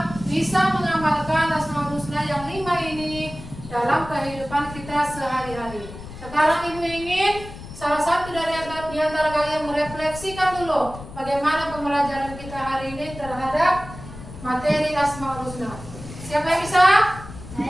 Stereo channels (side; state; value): left; noise; rumble, 14 dB below the sound